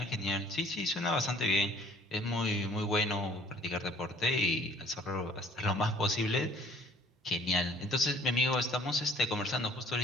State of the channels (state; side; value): normal; both; correlation 0.55